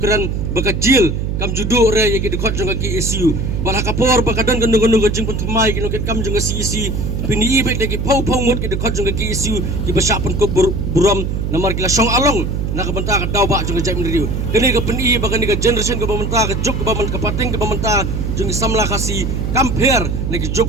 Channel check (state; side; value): noise; right; hum, 1 dB below the sound